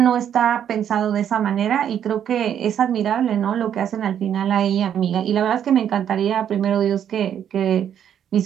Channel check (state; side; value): quieter; left; 9.4 dB